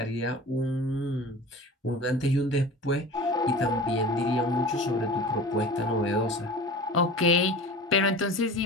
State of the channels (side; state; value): both; normal; correlation 0.37